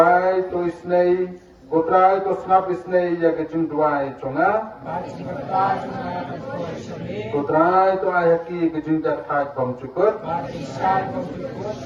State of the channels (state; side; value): identical; both; correlation 1.00